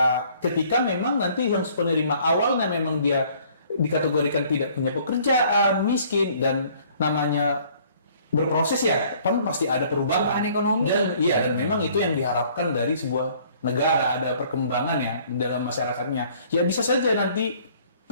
ketika memang nanti yang penerima awalnya memang dia dikategorikan tidak punya pekerjaan, miskin, dan namanya berproses ya, kan pasti ada perubahan. Perubahan ekonomi. Dan memang itu yang diharapkan dari sebuah negara, ada perkembangan ya dalam masyarakatnya. Ya bisa saja nanti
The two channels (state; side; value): inverted; both; correlation -0.58